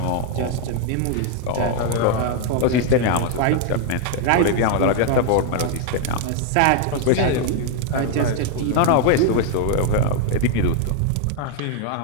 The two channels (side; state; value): both; different; correlation 0.00